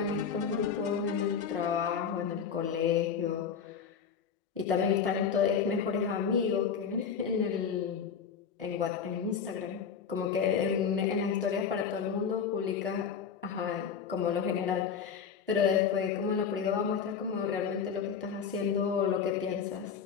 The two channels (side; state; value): right; quieter; 6.8 dB